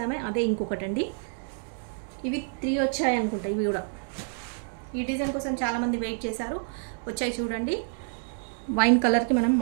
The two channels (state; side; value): silent; left; digital silence